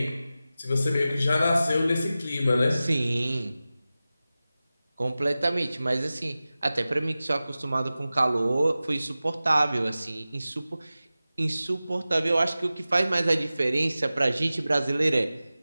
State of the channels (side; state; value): both; inverted; correlation -0.95